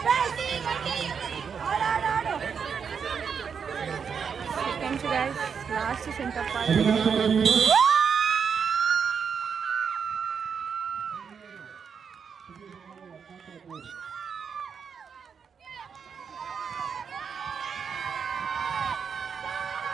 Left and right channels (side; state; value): left; quieter; 6.5 dB